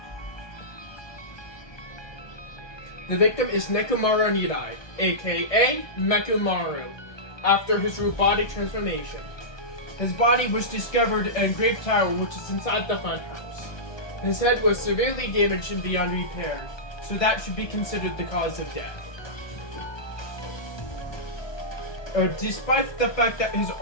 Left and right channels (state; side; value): late; right; 1.2 ms